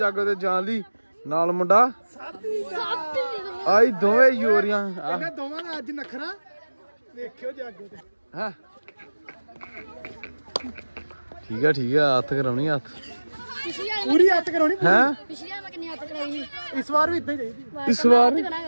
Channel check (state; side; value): inverted; both; correlation -1.00